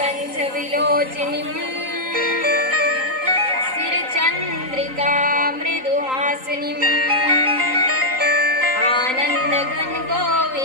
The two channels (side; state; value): left; late; 3.9 ms